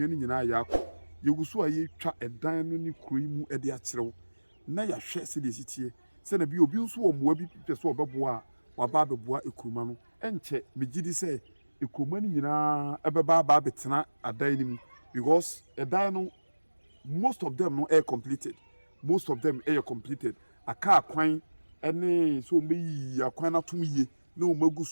ni nyina ya akọ yeguso aye twa edan no ni kuroi mu ede akyerew na ya hwe se de sitie se na bi obi nso wo moa bi pese obeboa waba beboa ekroma no enche megidi se ekroma ni nyina ebeba ba betena adan ni mu because edan no most of them no are completed aka kwan ene so meyi akwan na tum ye na o magu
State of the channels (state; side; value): inverted; both; correlation -1.00